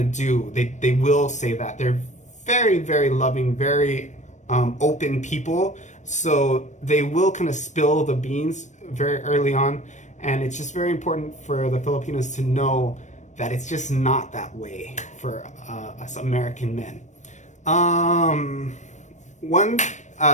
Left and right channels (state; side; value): late; right; 0.35 ms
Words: do. They will say that. They're very, very loving, very open people. So they will kind of spill the beans very early on. And it's just very important for the Filipinos to know that it's just not that way for us American men.